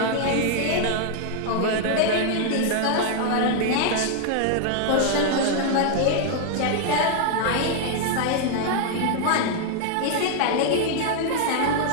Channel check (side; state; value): both; different; correlation 0.00